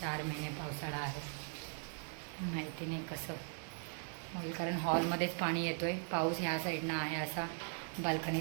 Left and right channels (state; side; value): silent; left; 51 dB below the other